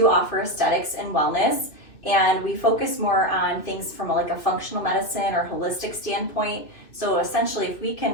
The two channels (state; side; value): late; right; 2.6 ms